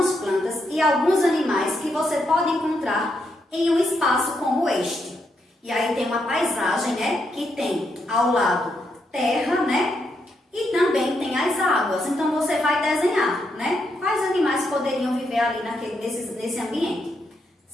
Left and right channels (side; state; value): both; normal; correlation 0.80